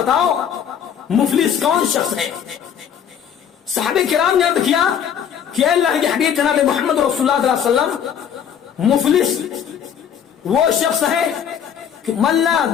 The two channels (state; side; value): quieter; right; 8.4 dB